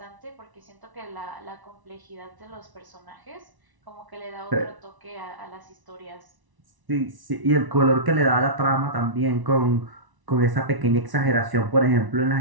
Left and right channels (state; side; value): late; left; 1.0 ms